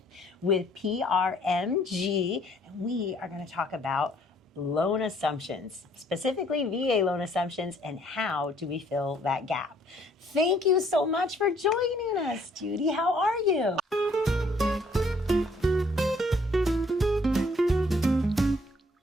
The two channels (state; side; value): normal; both; correlation 0.63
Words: with PRMG, and we are going to talk about loan assumptions, specifically VA loan assumptions, and how do we fill that gap. Thank you so much for joining us, Judy. How are you?